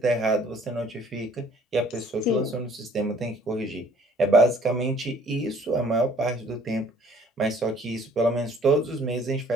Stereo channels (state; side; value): normal; both; correlation 0.57